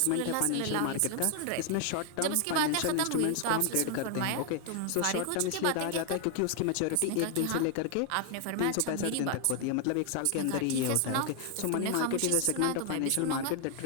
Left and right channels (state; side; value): different; both; correlation 0.00